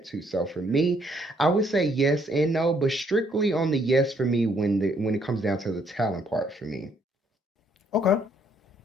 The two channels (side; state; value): both; normal; correlation 0.68